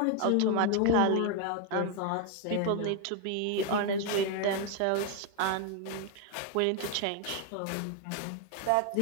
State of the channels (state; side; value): different; both; correlation 0.01